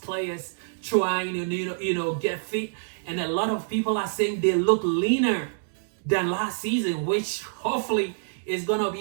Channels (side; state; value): left; silent; digital silence